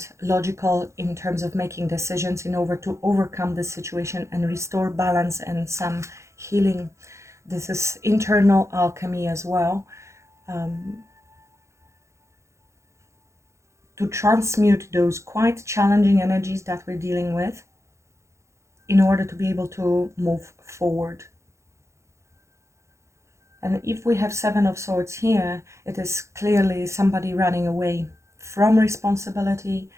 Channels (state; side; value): late; left; 0.14 ms